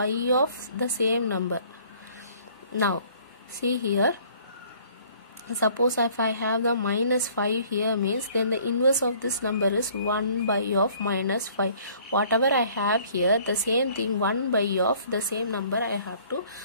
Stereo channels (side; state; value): both; inverted; correlation -0.56